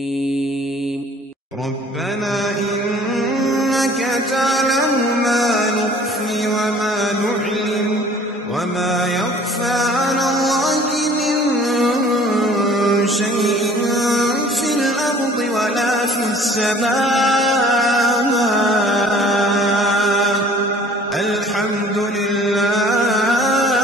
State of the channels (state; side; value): normal; both; correlation 0.51